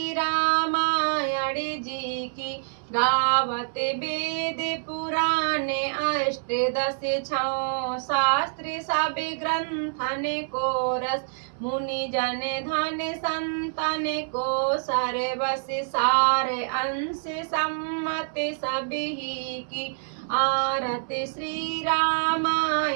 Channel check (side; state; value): left; silent; 60 dB below the other